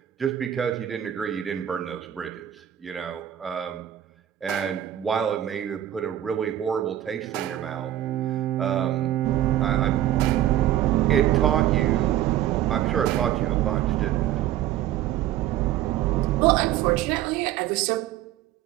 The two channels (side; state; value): left; quieter; 12.3 dB